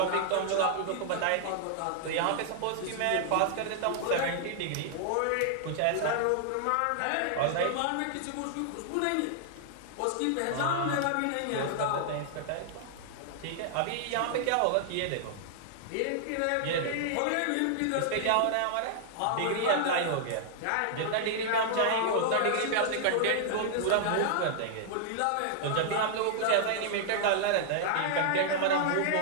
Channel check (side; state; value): both; different; correlation -0.01